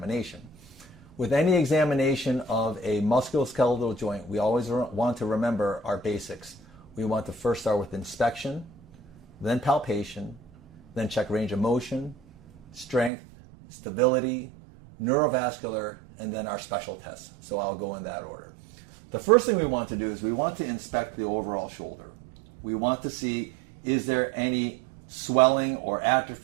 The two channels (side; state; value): left; drops out; at 13.1 s